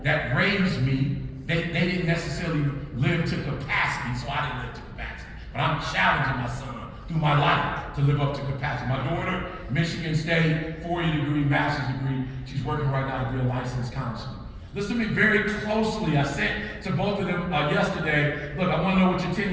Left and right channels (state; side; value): identical; both; correlation 1.00